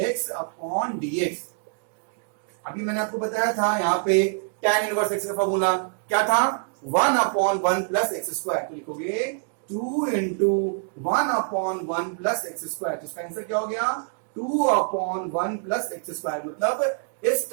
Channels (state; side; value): silent; left; 61 dB below the other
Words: x upon dx। अभी मैंने आपको बताया था यहाँ पे tan इनवर्स x का फॉर्मूला क्या था, 1/1 प्लस एक्स स्क्वायर। तो लिखोगे 2 into 1/1 प्लस एक्स स्क्वायर। तो इसका आंसर क्या हो गया, 2 अपॉन 1 प्लस एक्स स्क्वायर, मतलब इस